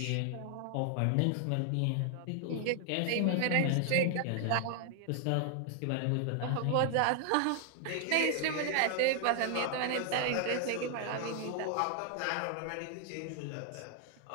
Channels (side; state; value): both; different; correlation 0.00